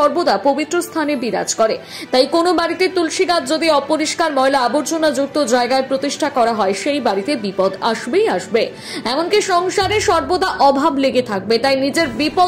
পবিত্র স্থানে বিরাজ করে। তাই কোনো বাড়িতে তুলসী গাছ যদি অপরিষ্কার ময়লা আবর্জনা যুক্ত জায়গায় প্রতিষ্ঠা করা হয়, সেই বাড়িতে বিপদ আসবেই আসবে। এমনকি সংসারে সর্বদা অভাব লেগে থাকবে। তাই নিজের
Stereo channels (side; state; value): both; identical; correlation 1.00